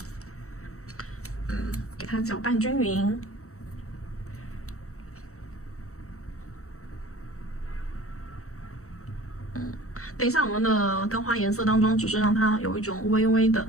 给它搅拌均匀。等一下我们的雕花颜色当中，只是让它有一种微微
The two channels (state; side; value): late; right; 0.64 ms